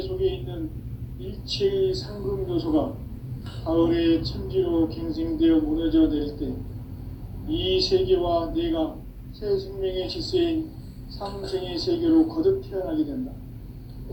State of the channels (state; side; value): identical; both; correlation 1.00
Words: 있는 일체의 상금 요소가 가을의 천지로 갱생되어 무너져 내릴 때 이 세계와 내가 새 생명의 질서인 상생의 세계로 거듭 태어나게 된다.